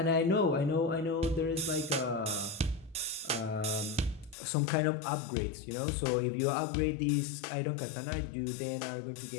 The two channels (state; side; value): drops out; right; at 4.4 s